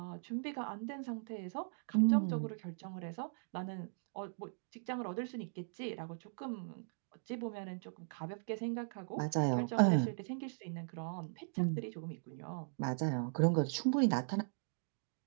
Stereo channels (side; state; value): left; silent; digital silence